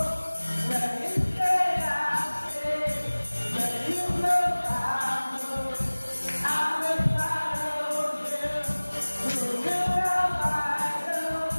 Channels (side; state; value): both; inverted; correlation -1.00